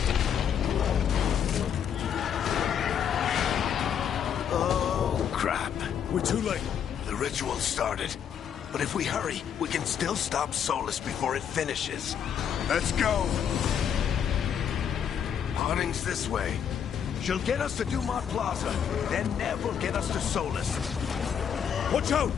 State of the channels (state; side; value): quieter; right; 8.3 dB